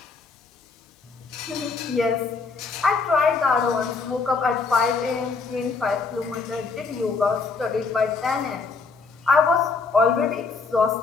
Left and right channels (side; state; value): right; quieter; 4.5 dB